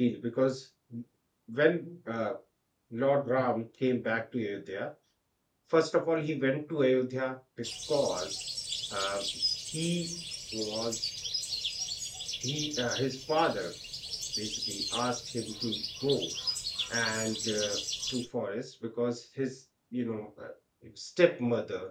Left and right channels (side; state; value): both; identical; correlation 1.00